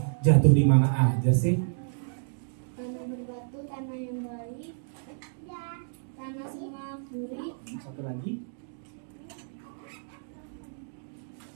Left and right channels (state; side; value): silent; left; digital silence